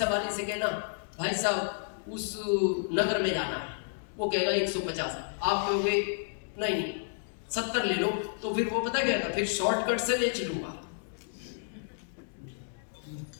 वाले से कहना भाई साहब उस नगर में जाना है, वो कहेगा 150, आप कहोगे नहीं 70 ले लो, तो फिर वो पता क्या, फिर शॉर्टकट से ले चलूंगा,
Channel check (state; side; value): silent; right; digital silence